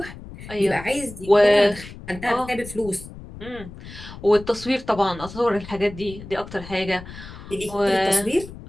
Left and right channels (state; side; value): noise; left; rumble, 15 dB below the sound